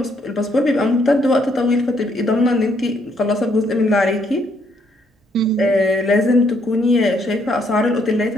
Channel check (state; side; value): normal; both; correlation 0.71